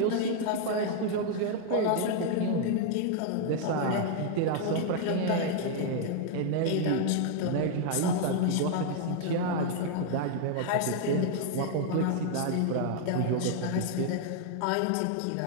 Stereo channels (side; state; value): both; different; correlation 0.00